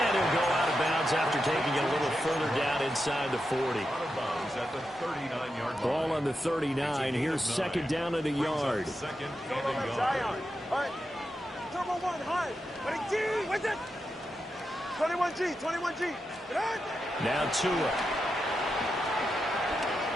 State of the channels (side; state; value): both; normal; correlation 0.88